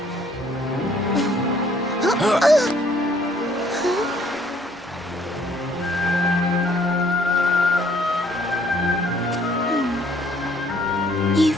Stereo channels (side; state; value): both; normal; correlation 0.62